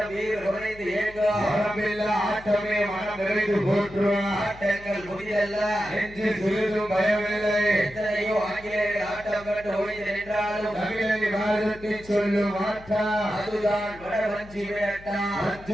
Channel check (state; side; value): noise; left; hum, 19 dB below the sound